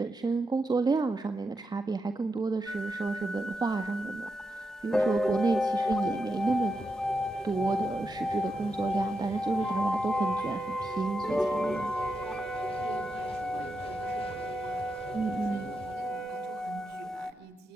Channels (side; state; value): both; normal; correlation 0.86